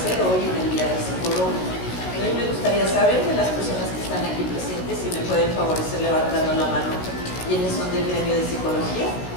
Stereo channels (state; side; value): late; right; 16 ms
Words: hoy en el Día del Psicólogo. A mí me gustaría saber de las personas que están aquí presentes si me pueden favorecer levantando la mano quiénes son del gremio de psicología.